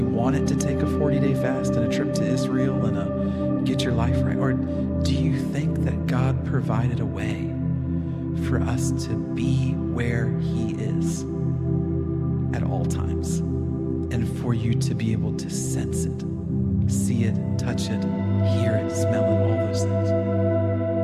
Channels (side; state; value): both; identical; correlation 1.00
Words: want it to take a 40-day fast and a trip to Israel and a get your life right? Or do you think that God provided a way for us to be where he is at all times, and for you to be able to sense it, see it, touch it, hear it, smell it, all those things?